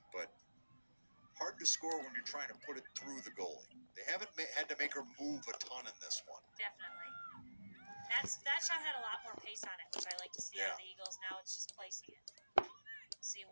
but hard to score when you're trying to put it through the goalie. They haven't had to make her move a ton in this one. Definitely. That shot had a lot more pace on it, which I like to see out of the Eagles. Now it's just placing it. We'll see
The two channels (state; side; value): inverted; both; correlation -1.00